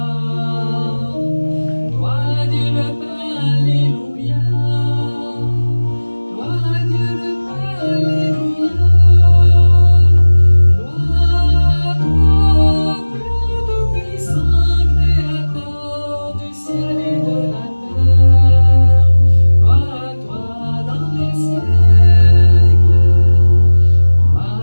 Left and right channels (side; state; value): both; inverted; correlation -1.00